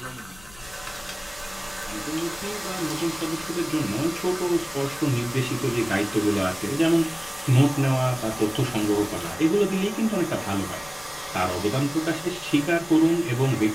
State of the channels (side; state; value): left; noise; rumble, 22 dB below the sound